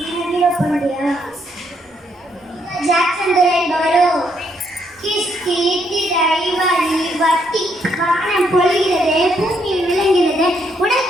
பொழிகிறது, பூமியில் விளங்குகிறது,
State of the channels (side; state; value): both; normal; correlation 0.74